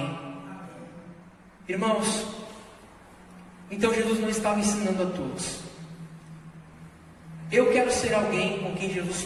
Irmãos, então Jesus não estava ensinando a todos. Eu quero ser alguém com quem Jesus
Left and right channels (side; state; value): both; identical; correlation 1.00